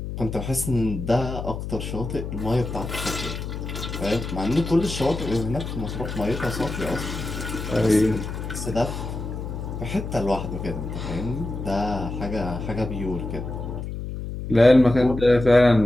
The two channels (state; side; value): noise; left; hum, 6 dB below the sound